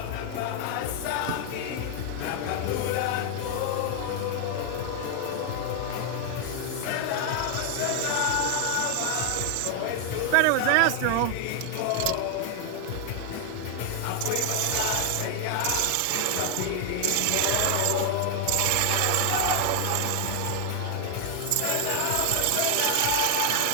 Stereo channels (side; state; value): both; different; correlation 0.00